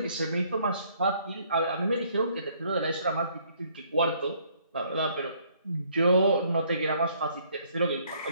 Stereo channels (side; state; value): both; inverted; correlation -0.64